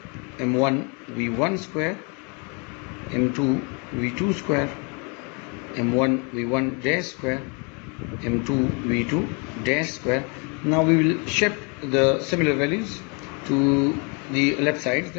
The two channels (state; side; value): quieter; right; 34.1 dB